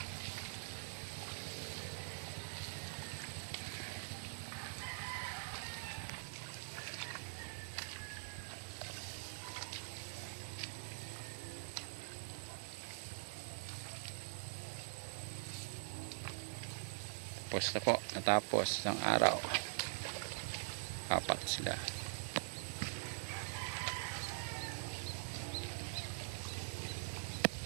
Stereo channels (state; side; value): silent; left; digital silence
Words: Tapos na po, natapos ng araw. Apat sila.